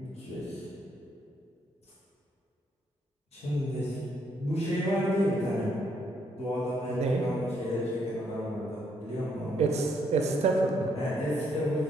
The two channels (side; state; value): both; normal; correlation 0.73